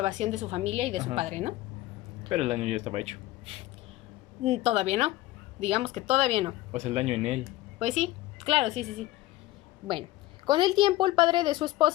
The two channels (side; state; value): right; quieter; 16.9 dB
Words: de su familia y de su padre, ¿no? Pero el daño ya estaba hecho. Todavía no. Digamos que todavía no. O sea, el daño en él. Pues sí, claro, sí. Bueno. Con el tiempo, el padre de su